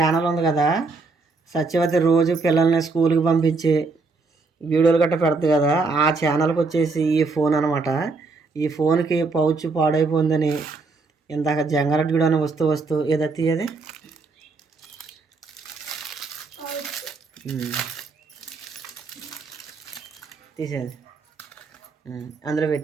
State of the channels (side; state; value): left; quieter; 3.9 dB